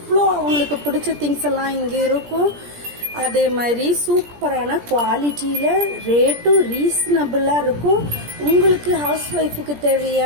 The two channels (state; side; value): late; left; 17 ms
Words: அவங்களுக்கு பிடிச்ச திங்ஸ் எல்லாம் இங்க இருக்கும். அதே மாதிரி சூப்பரான குவாலிட்டியில ரேட்டும் ரீசனபிளா இருக்கும். உங்களுக்கு ஹவுஸ் ஒய்ஃபுக்கு